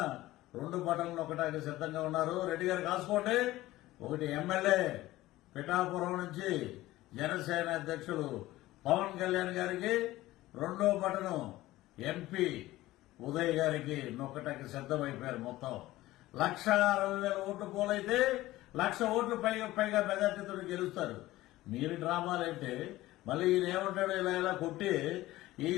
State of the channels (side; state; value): right; quieter; 16.9 dB